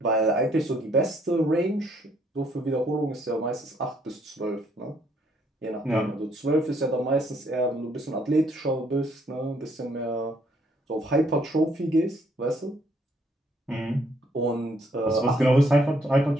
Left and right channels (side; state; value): both; normal; correlation 0.68